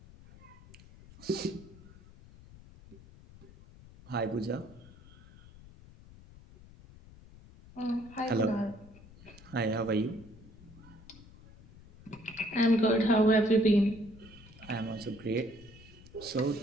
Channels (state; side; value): noise; left; rumble, 21 dB below the sound